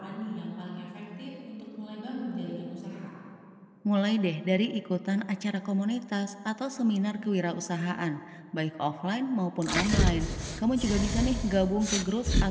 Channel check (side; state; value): both; identical; correlation 1.00